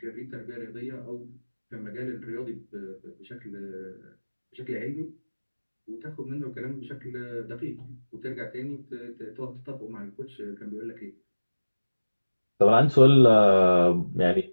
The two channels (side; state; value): both; inverted; correlation -1.00